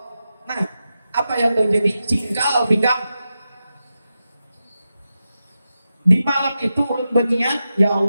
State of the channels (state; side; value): inverted; both; correlation -0.90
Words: Nah, apa yang terjadi? Cingkal pinggang Di malam itu ulun berniat, ya